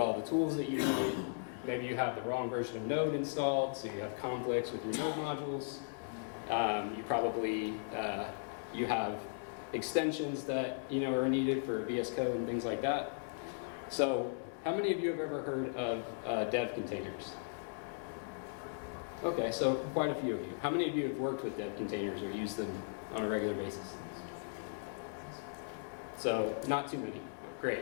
the tools that you need. Maybe you have the wrong version of Node installed, so you have conflicts with your Node modules. You probably, you have extensions that are needed for VS Code and things like that. So how many of you have ever heard of dev containers? Okay, so quite a few of you. How many of you have worked with dev containers or used them on a regular basis? So not too many.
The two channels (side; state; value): right; silent; digital silence